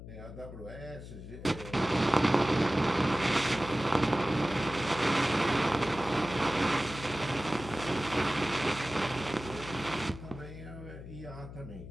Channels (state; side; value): noise; left; hum, 13 dB below the sound